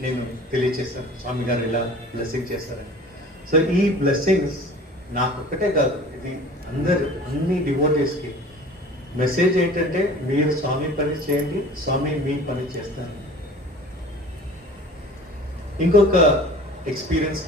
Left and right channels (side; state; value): both; normal; correlation 0.44